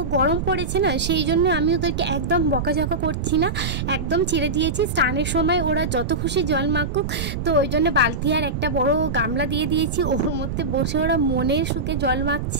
গরম পড়েছে না, সেই জন্য আমি ওদেরকে একদম বকাঝকা করছি না, একদম ছেড়ে দিয়েছি। স্নানের সময় ওরা যত খুশি জল মাখুক, তো ওই জন্য বালতি আর একটা বড় গামলা দিয়ে দিয়েছি, ওর মধ্যে বসে ওরা মনের সুখে জল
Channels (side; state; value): right; noise; rumble, 3 dB below the sound